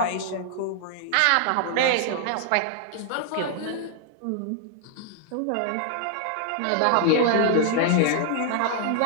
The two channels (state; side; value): different; both; correlation 0.00